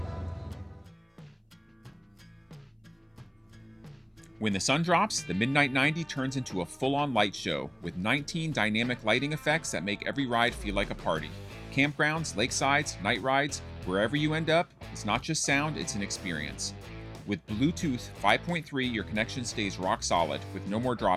When the sun drops, the Midnight 90 turns into a full-on light show with 19 dynamic lighting effects that make every ride feel like a party. Campgrounds, lakesides, night rides, wherever you end up, it's not just sound, it's an experience. With Bluetooth 5.3, your connection stays rock solid with no more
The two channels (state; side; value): identical; both; correlation 1.00